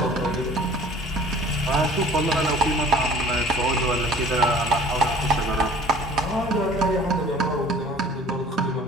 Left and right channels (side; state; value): both; normal; correlation 0.48